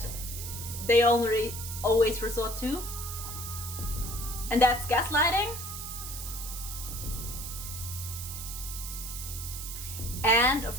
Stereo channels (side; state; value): right; noise; hiss, 8 dB below the sound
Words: they always resort to. And that's gaslighting. And,